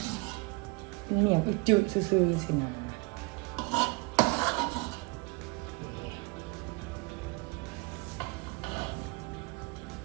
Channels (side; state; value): left; quieter; 26.4 dB